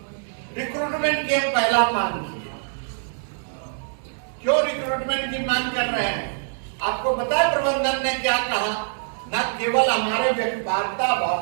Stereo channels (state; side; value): silent; left; digital silence